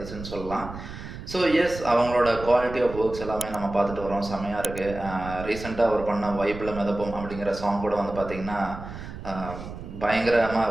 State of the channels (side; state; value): right; noise; rumble, 11 dB below the sound